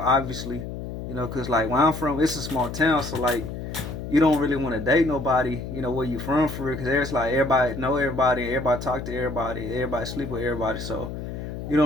obviously, because like where I'm from, it's a small town, so like you don't really want to date nobody, where you from for real, because there's like everybody know everybody, everybody talk to everybody, everybody sleep with everybody, so you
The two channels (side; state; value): left; noise; hum, 7 dB below the sound